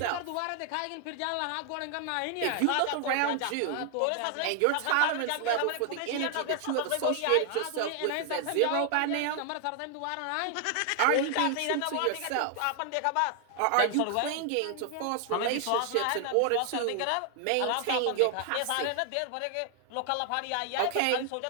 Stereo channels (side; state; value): both; different; correlation 0.00